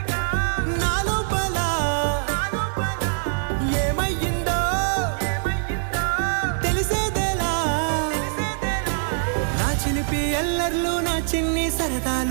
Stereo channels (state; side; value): silent; left; digital silence